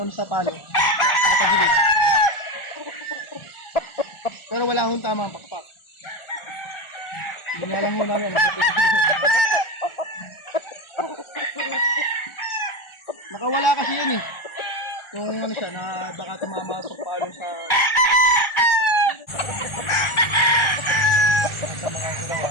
sa palo. Nakapagilid. Pero wala hong tama ang pakpak. Hindi nga lang ho namin. Nakawala kasi yun eh. Kung ano siya, na baka tumama sa palo sa... Sa mga ginawa.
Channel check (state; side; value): late; right; 1.4 ms